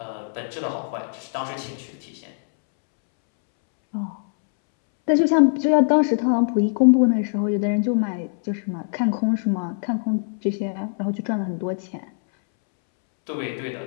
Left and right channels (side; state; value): right; silent; 64 dB below the other